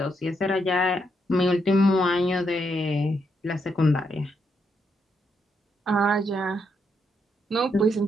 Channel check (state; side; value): normal; both; correlation 0.79